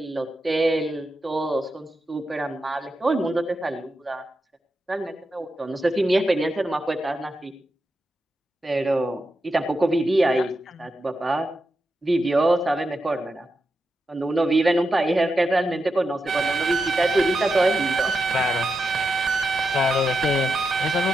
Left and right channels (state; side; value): normal; both; correlation 0.87